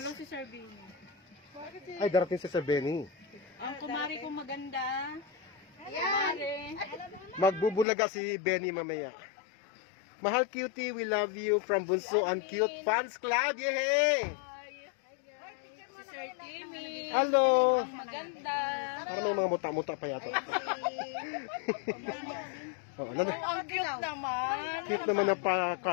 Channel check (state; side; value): drops out; right; at 7.9 s